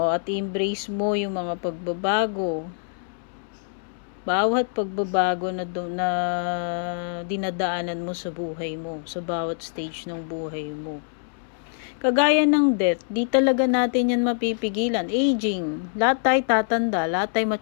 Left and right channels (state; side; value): silent; right; 62 dB below the other